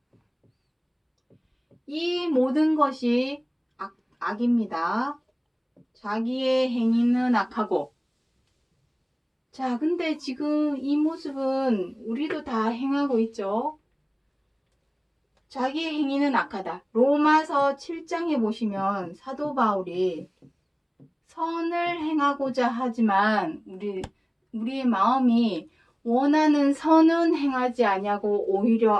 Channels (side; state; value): both; identical; correlation 1.00